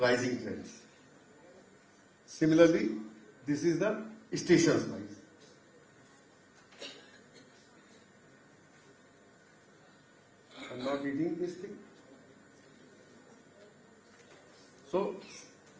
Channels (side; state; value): both; identical; correlation 1.00